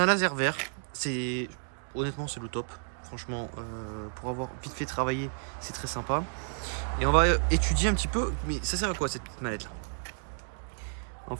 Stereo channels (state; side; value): silent; left; 57 dB below the other